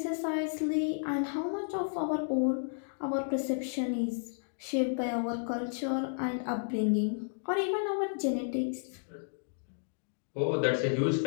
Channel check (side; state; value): right; silent; digital silence